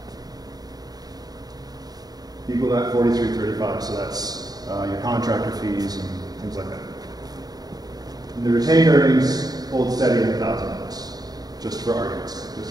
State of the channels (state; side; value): late; left; 0.19 ms